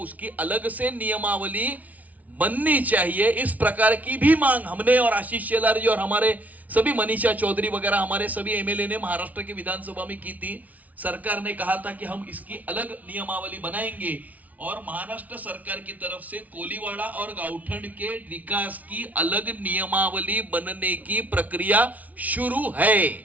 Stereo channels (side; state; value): left; late; 0.072 ms